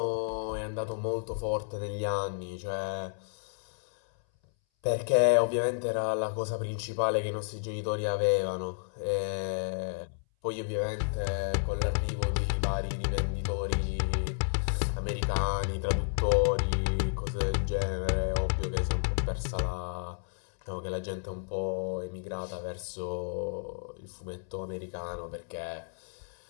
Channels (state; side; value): silent; right; 57 dB below the other